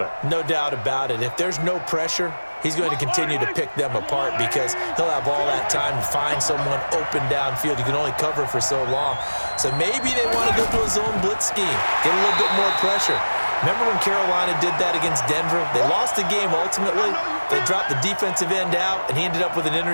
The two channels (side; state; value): both; inverted; correlation -1.00